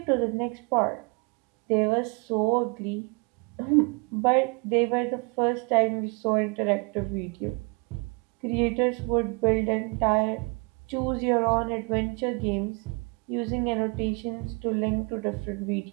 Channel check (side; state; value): left; quieter; 31.6 dB